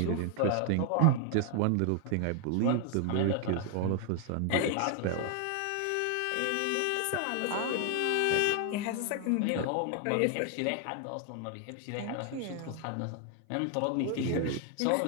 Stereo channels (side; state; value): both; different; correlation 0.00